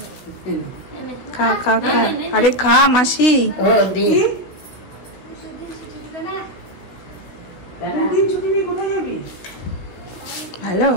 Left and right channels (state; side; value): late; right; 16 ms